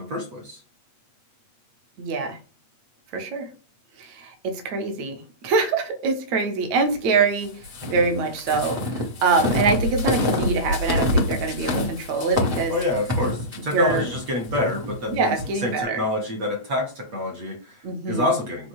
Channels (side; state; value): left; late; 8.4 ms